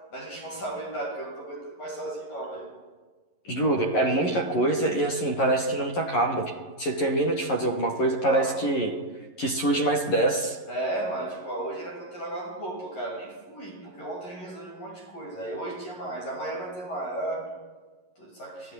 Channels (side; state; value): right; late; 11 ms